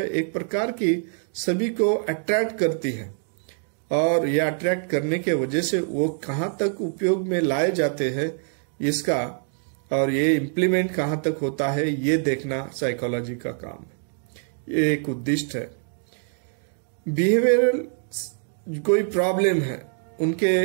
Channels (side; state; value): left; silent; 56 dB below the other